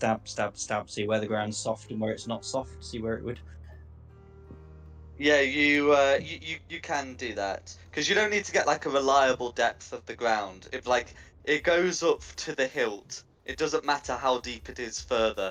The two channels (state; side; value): identical; both; correlation 1.00